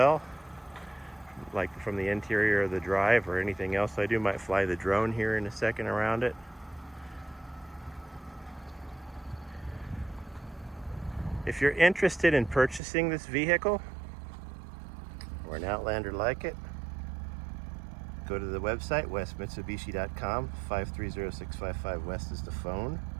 like from the interior of the drive or anything else I do. Might fly the drone here in a second around it. If you're interested in purchasing this vehicle or an Outlander like it, go to the website, westmitsubishi.com. 530-655 West is the phone.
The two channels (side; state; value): left; drops out; at 12.8 s